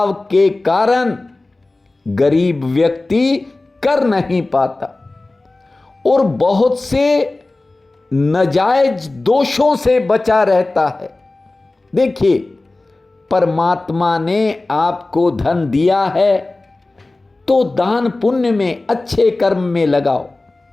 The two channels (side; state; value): right; quieter; 3.1 dB